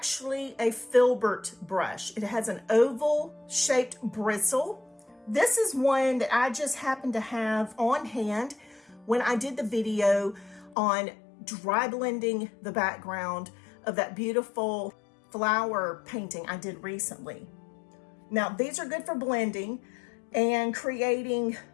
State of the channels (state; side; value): drops out; right; at 10.8 s